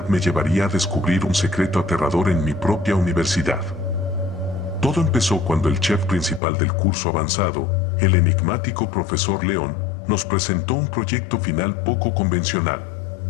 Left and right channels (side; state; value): right; drops out; at 6.4 s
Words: me llevaría a descubrir un secreto aterrador en mi propia universidad. Todo empezó cuando el chef principal del curso avanzado, el enigmático profesor León, nos presentó un proyecto final poco convencional.